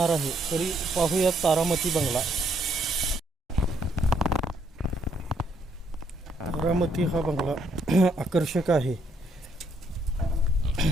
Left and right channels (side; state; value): both; normal; correlation 0.71